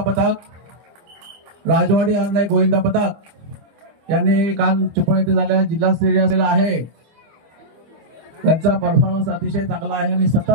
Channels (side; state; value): left; late; 25 ms